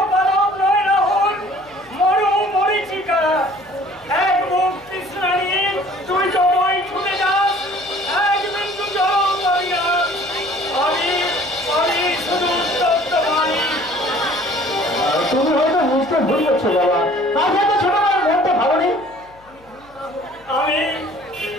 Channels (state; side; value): noise; left; hum, 28 dB below the sound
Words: পালক নয় রাহুল, মরু মরিচিকা। এক মুখ তৃষ্ণা নিয়ে তুই জমাই ছুটে যাস, এক বিন্দু জল পাবি না। আমি শুধু উত্তপ্ত পানি। তুমি হয়তো বুঝতে ভুল করছো বাবা। আজ হয়তো ছোট মার মনটা ভালো নেই। আমি